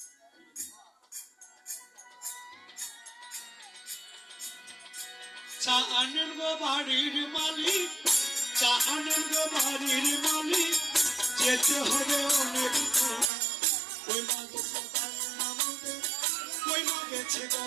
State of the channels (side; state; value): left; drops out; at 13.2 s